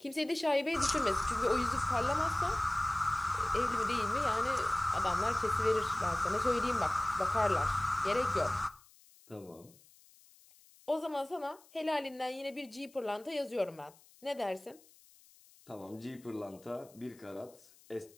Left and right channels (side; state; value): left; noise; hiss, 27 dB below the sound